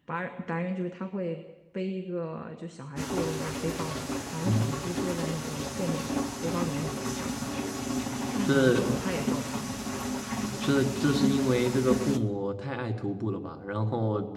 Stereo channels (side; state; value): both; identical; correlation 1.00